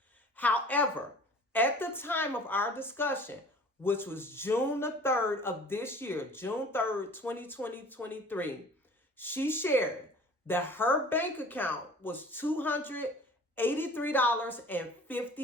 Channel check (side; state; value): both; normal; correlation 0.46